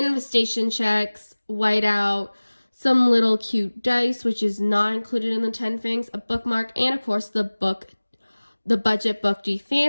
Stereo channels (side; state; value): both; inverted; correlation -1.00